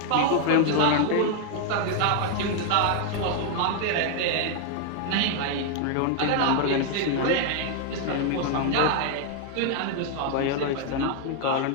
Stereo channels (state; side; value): different; both; correlation 0.00